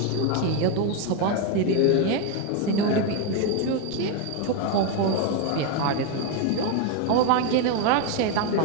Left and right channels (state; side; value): different; both; correlation 0.02